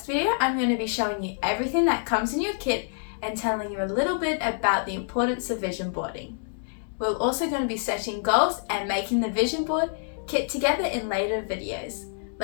video, I'm going to be showing you everything that comes in your kit and telling you a little bit about the importance of vision boarding. We're also going to be setting goals and making the vision board kit together in later videos.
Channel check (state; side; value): silent; right; digital silence